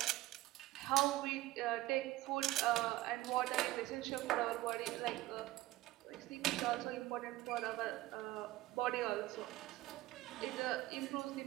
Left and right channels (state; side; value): quieter; left; 17.0 dB